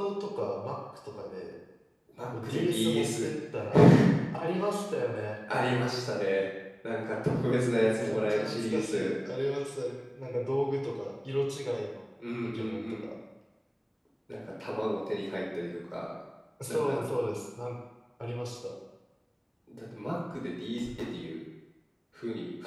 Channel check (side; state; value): both; identical; correlation 1.00